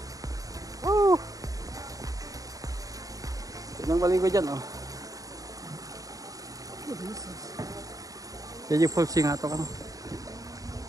Oh! Tinang baligo dyan, oh. Jadi full sing ato kan.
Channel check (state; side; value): late; left; 0.17 ms